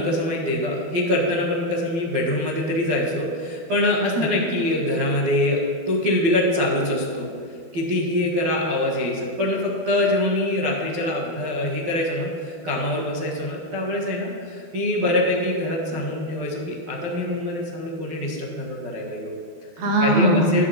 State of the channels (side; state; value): left; late; 12 ms